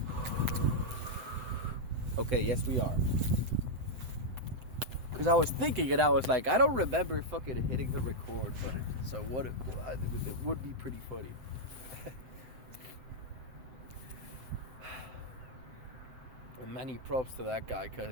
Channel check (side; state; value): left; late; 7.8 ms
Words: Okay, yes we are. Because I was thinking and I was like, I don't remember fucking hitting the record button. So it would be pretty funny. And many props to that guy,